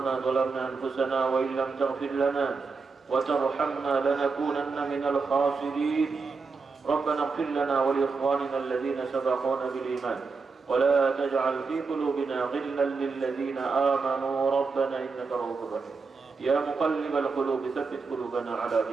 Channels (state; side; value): quieter; left; 4.6 dB